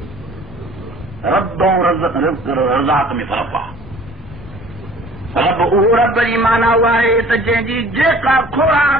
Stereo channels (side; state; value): both; normal; correlation 0.49